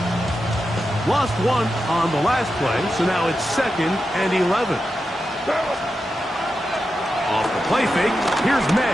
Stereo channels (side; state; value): both; normal; correlation 0.89